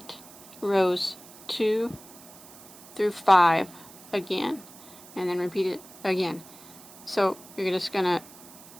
rows 2 through 5 again, and then repeat it again. So you're just going to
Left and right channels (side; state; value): right; noise; hiss, 19 dB below the sound